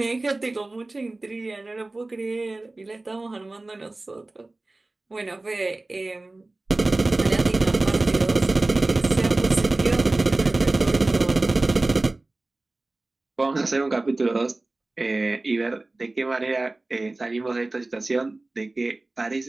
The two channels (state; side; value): quieter; left; 3.0 dB